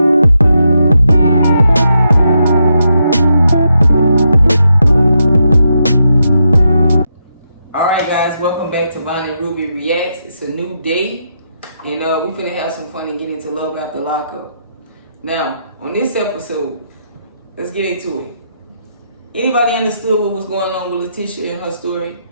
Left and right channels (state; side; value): inverted; both; correlation -0.82